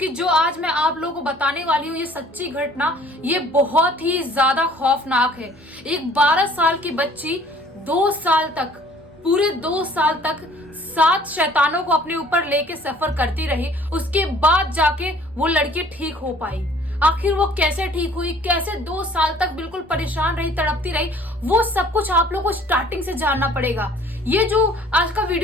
जो आज मैं आप लोगों को बताने वाली हूँ ये सच्ची घटना ये बहुत ही ज्यादा खौफनाक है। एक 12 साल की बच्ची 2 साल तक, पूरे 2 साल तक 7 शैतानों को अपने ऊपर लेके सफर करती रही। उसके बाद जाके वो लड़की ठीक हो पाई। आखिर वो कैसे ठीक हुई, कैसे 2 साल तक बिल्कुल परेशान रही, तड़पती रही, वो सब कुछ आप लोगों को स्टार्टिंग से जानना पड़ेगा। ये जो आज का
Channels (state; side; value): normal; both; correlation 0.54